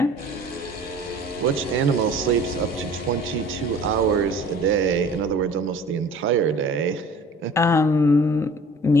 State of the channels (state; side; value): normal; both; correlation 0.46